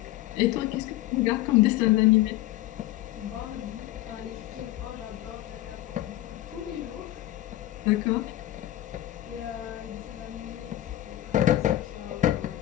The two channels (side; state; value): right; quieter; 15.0 dB